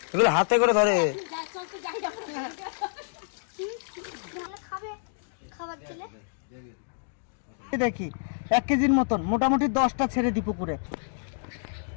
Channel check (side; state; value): right; silent; digital silence